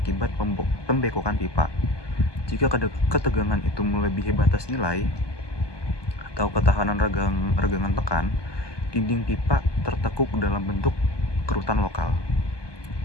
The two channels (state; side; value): late; right; 1.2 ms